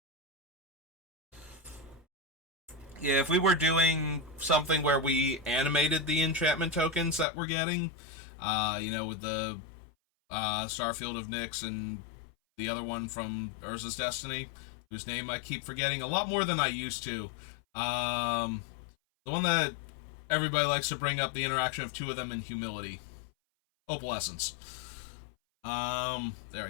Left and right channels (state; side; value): drops out; right; at 7.2 s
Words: Yeah, if we were doing something where we animated the enchantment tokens that we're getting, with the Starfield of Nyx and the other one from Urza's Destiny, whose name I keep forgetting a lot more than I used to. The one that everybody likes to bring up, the interaction of two of them in Humility. Opalescence. There